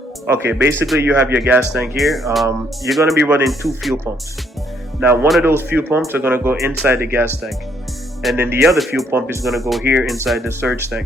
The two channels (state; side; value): normal; both; correlation 0.69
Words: okay, basically you have your gas tank here. You're gonna be running two fuel pumps. Now one of those fuel pumps are gonna go inside the gas tank, and then the other fuel pump is gonna go here inside the surge